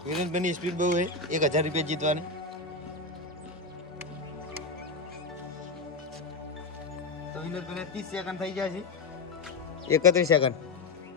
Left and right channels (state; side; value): quieter; right; 3.9 dB